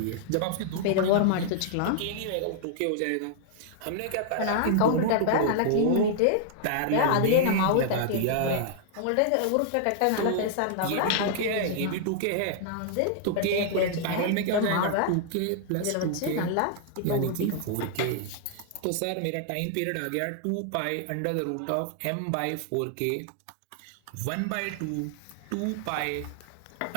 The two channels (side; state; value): both; different; correlation -0.01